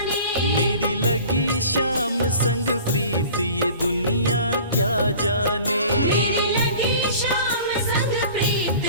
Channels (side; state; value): both; inverted; correlation -0.44